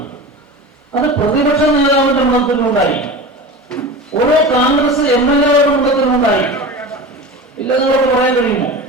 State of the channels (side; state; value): both; normal; correlation 0.31